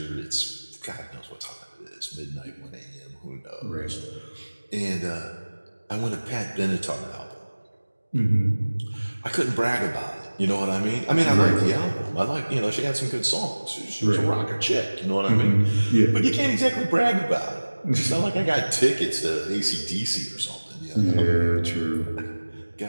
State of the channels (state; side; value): inverted; both; correlation -1.00